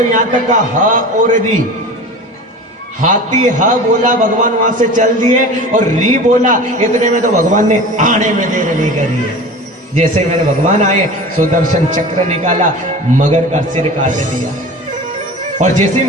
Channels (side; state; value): both; normal; correlation 0.36